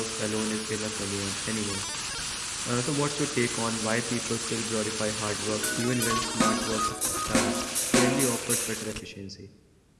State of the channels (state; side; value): identical; both; correlation 1.00